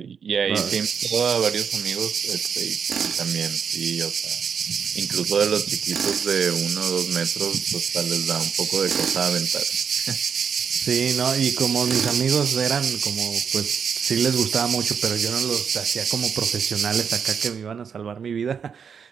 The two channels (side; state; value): left; quieter; 6.8 dB